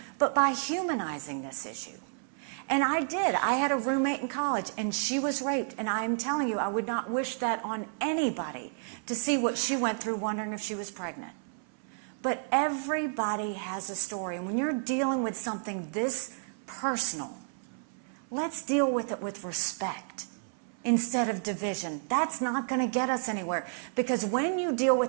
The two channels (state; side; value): silent; left; 57 dB below the other